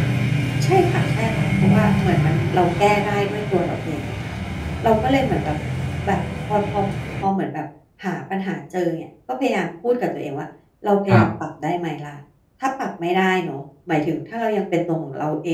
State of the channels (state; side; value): identical; both; correlation 1.00